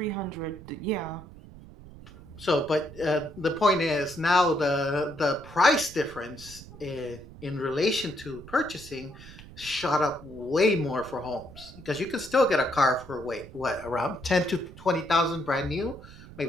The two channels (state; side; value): noise; right; rumble, 17 dB below the sound